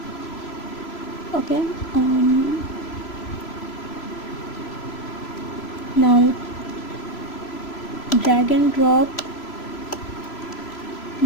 Okay, now drag and drop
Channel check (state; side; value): late; right; 3.0 ms